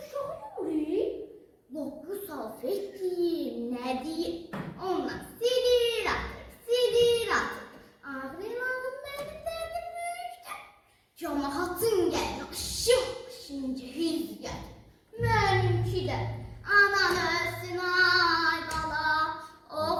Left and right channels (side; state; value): both; identical; correlation 1.00